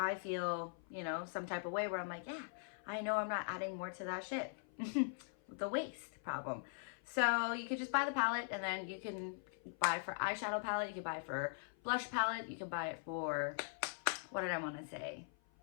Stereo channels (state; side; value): silent; right; 50 dB below the other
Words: feel, you know, some type of way where I'm like, yeah, I know I'm not adding more to that shit. The waste problem. So you could just buy the palette, and then you can buy for eyeshadow palette, you can buy for blush palette, you can buy it for, what did I want to say?